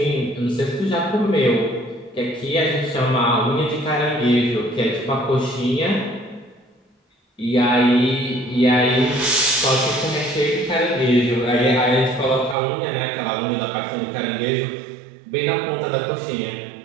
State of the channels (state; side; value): drops out; left; at 12.6 s